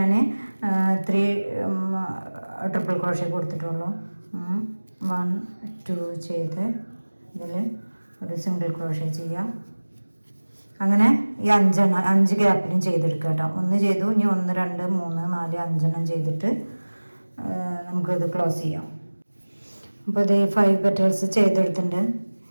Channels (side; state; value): both; inverted; correlation -1.00